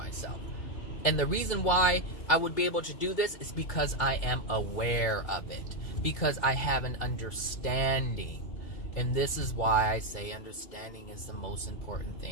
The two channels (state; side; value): late; right; 2.3 ms